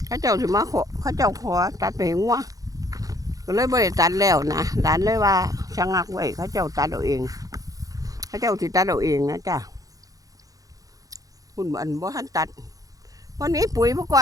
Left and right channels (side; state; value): left; late; 0.17 ms